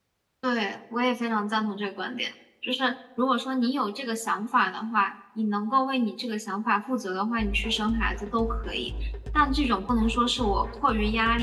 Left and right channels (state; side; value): identical; both; correlation 1.00